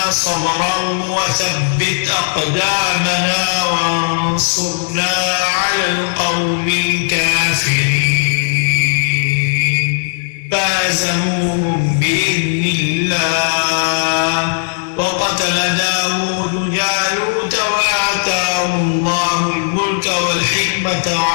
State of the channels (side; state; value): right; silent; digital silence